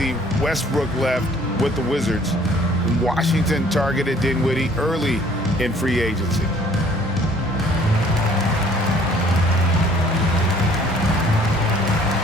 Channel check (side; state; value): both; normal; correlation 0.57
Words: Westbrook left with the Wizards. Washington targeted Dinwiddie early in free agency.